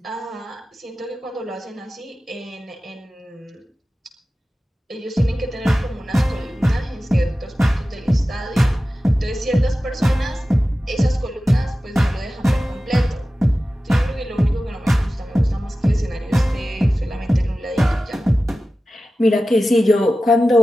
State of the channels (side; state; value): both; normal; correlation 0.94